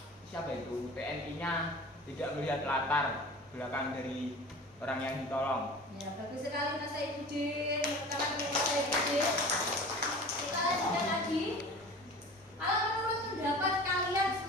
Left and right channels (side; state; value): both; normal; correlation 0.39